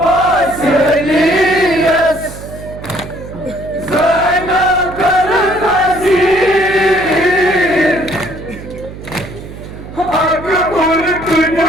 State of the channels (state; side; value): noise; right; hum, 13 dB below the sound